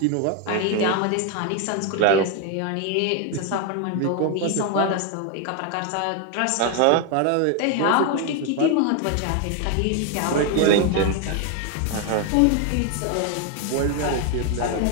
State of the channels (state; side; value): different; both; correlation 0.01